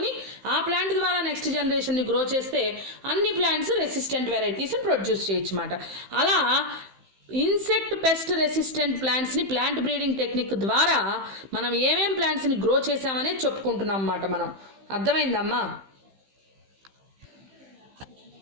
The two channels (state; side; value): late; left; 15 ms